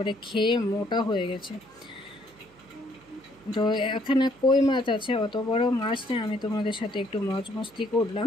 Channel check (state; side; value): noise; right; hum, 29 dB below the sound